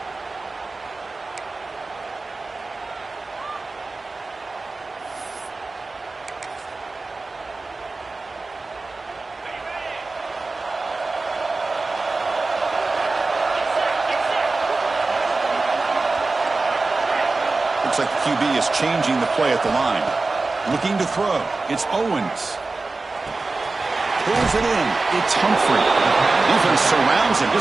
Looks like the QB is changing the play at the line. Looking to throw. It's Owens. Pulls it in. It's Humphrey. Defense surrounds him.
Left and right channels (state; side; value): quieter; left; 3.6 dB